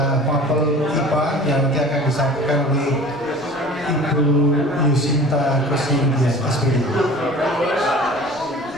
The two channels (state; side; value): normal; both; correlation 0.43